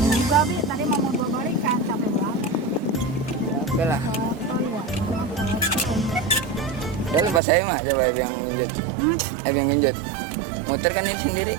juga, Bi. Tadi mau bawa balikan, capek banget. Ya, oke lah. Oh iya. Ya lepas saya mah, coba yang genjot. Yang genjot. Motor kan ini sendiri.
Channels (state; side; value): drops out; left; at 7.4 s